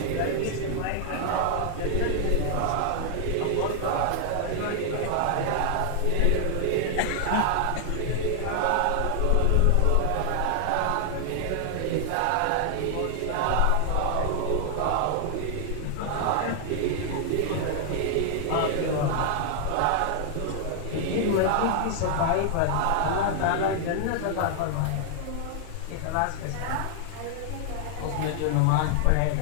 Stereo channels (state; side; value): different; both; correlation 0.00